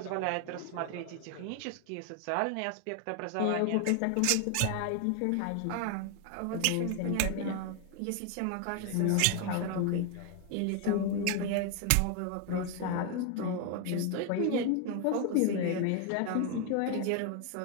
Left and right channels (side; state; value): both; different; correlation 0.00